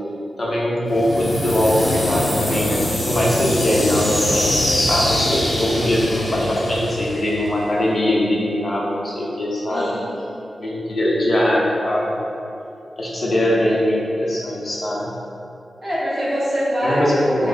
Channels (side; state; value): both; normal; correlation 0.90